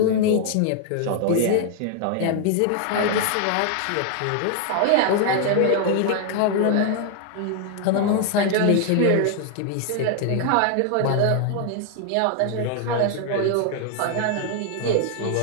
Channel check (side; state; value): both; different; correlation 0.00